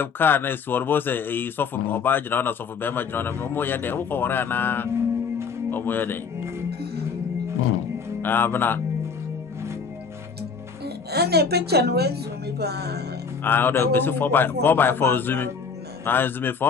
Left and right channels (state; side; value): quieter; right; 5.5 dB